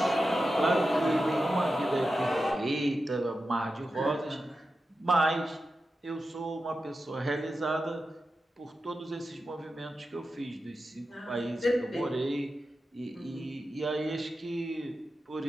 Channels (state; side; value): normal; both; correlation 0.91